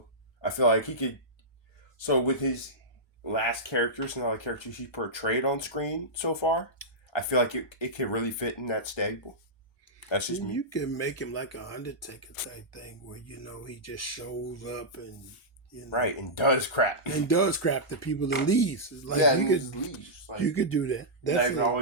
I feel like he could. So with his last characters and all the characters he portrayed on screen so far, I feel like it can really fit in that stable. That's just me. You can make him like an Undertaker type thing where, he just shows up and, Right, and does crap. And does crap to people and leaves. It's like leaves. Like, you could do that. That's not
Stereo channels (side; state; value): both; normal; correlation -0.12